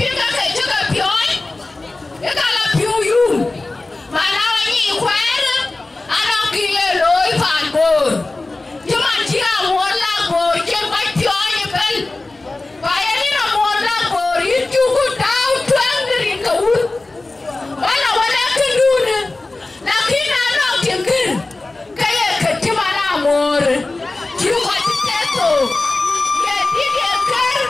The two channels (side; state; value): right; quieter; 3.1 dB